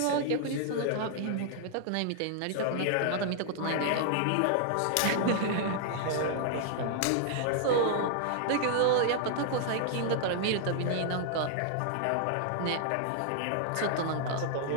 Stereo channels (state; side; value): different; both; correlation -0.01